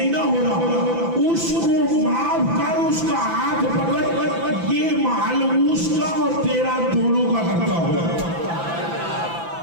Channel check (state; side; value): late; left; 5.9 ms